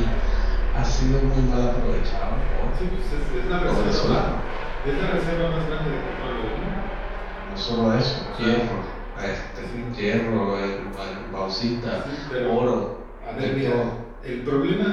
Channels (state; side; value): identical; both; correlation 1.00